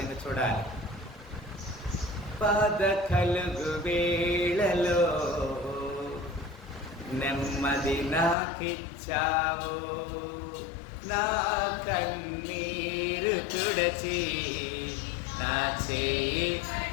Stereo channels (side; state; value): right; drops out; at 8.3 s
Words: చూడాలి. బాధ కలుగు వేళలో నెమ్మది నాకిచ్చావు, నా కన్నీరు తుడచి నా చేయి.